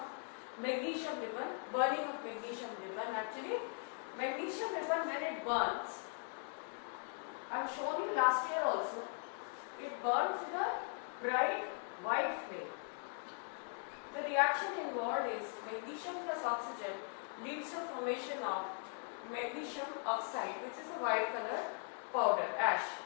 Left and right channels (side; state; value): right; silent; 51 dB below the other